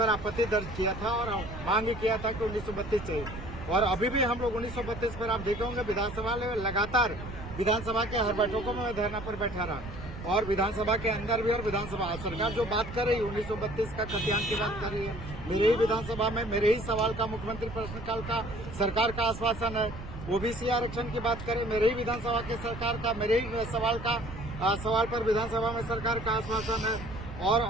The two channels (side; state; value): right; noise; rumble, 11 dB below the sound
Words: आपत्ति दर्ज किया था और मांग किया था कि 1932 चाहिए। और अभी भी हम लोग 1932 पर, आप देखे होंगे, विधानसभा में लगातार विधानसभा के हर बैठकों में मैं धरना पर बैठा रहा और विधानसभा के अंदर भी। और विधानसभा सरकार जो बात कर रही है 1932 का खतियान की बात कर रही है, मेरे ही विधानसभा में मेरे ही सवाल का, मुख्यमंत्री प्रश्नकाल का सरकार का आश्वासन है। OBC आरक्षण की बात करें, मेरे ही विधानसभा के सरकार का, मेरे ही सवाल पर विधानसभा में सरकार का आश्वासन है।